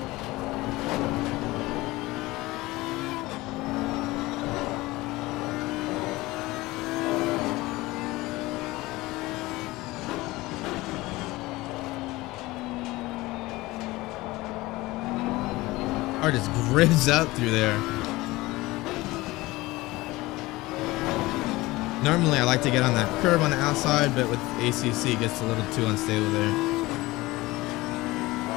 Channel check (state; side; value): quieter; right; 20.1 dB